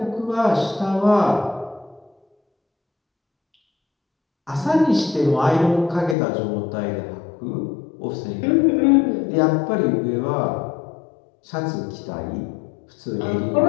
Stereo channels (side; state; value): right; drops out; at 6.2 s